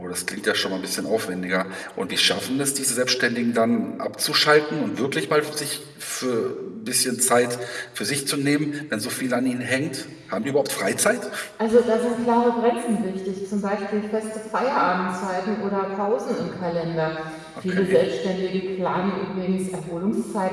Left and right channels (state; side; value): identical; both; correlation 1.00